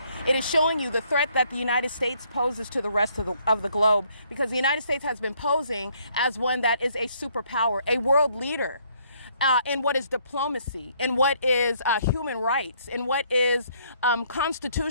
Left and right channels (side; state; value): both; inverted; correlation -0.67